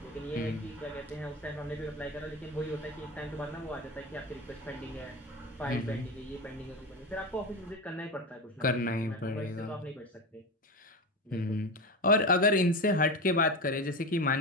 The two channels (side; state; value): both; normal; correlation 0.22